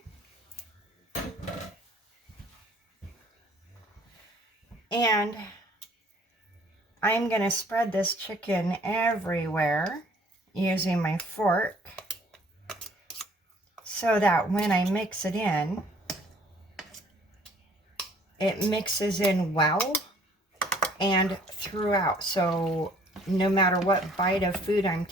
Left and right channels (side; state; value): both; normal; correlation 0.57